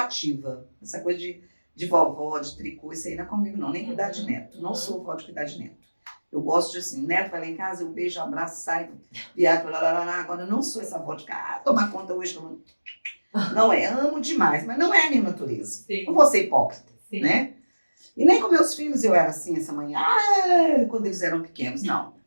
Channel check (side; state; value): both; inverted; correlation -1.00